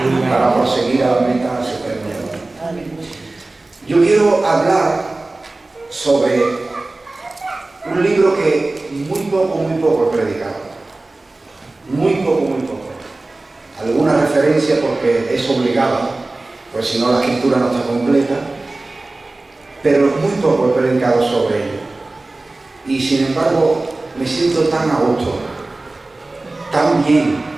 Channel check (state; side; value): quieter; left; 3.1 dB